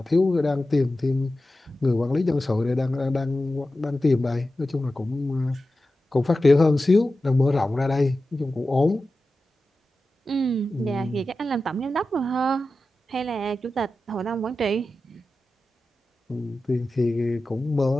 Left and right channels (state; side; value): normal; both; correlation 0.93